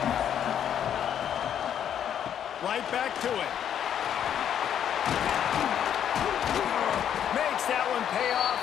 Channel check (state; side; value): quieter; right; 9.4 dB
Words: Right back to it. Makes that one pay